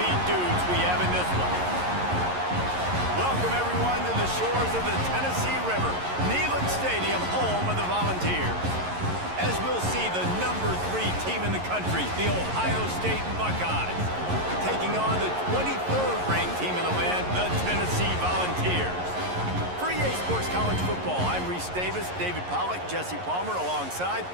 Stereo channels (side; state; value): left; late; 11 ms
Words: dudes we have in this one. Welcome everyone to the shores of the Tennessee River, Neyland Stadium, home of the Volunteers. As we'll see the number 3 team in the country, the Ohio State Buckeyes, taking on the 23rd ranked team in the land, the Tennessee Volunteers. For EA Sports College Football, I'm Reese Davis, David Pollack, Jesse Palmer alongside.